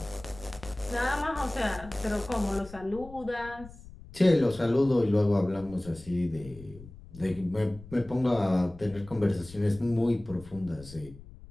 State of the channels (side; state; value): left; noise; rumble, 18 dB below the sound